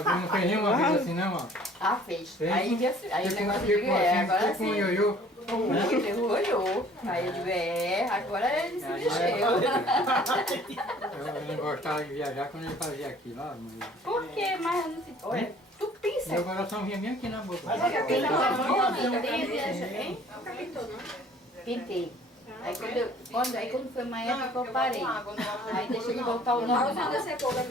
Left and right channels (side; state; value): both; normal; correlation 0.53